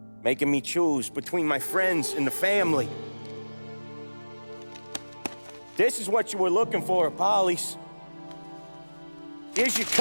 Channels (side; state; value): both; inverted; correlation -1.00